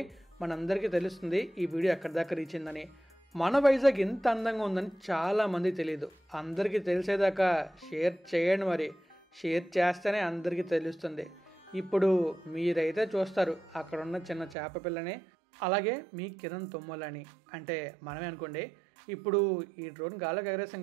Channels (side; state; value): left; drops out; at 14.6 s